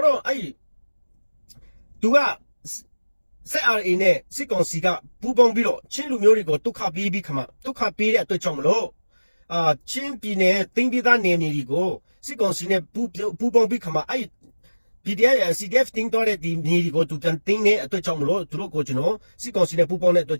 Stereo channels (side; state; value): both; inverted; correlation -1.00